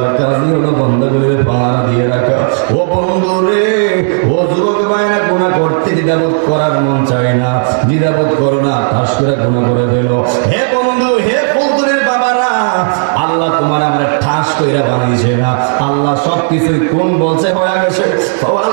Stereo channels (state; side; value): silent; left; digital silence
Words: কাজই হলো বান্দাগুলোর পাহারা দিয়ে রাখা। ও বন্ধু রে, ও যুবক ভাইরা, গুনাহ করতে দ্বিধাবোধ করার মন চায় না, দ্বিধাবোধ করো না, ঠাস করে গুনাহ করে ফেলো। হে বন্ধু, হে বন্ধুরের বাবারা, আল্লাহ তোমার আমার ঠাস কইরা বানিয়েছে না, আল্লাহ সবকিছুই কোন বলছে হয়ে গেছে।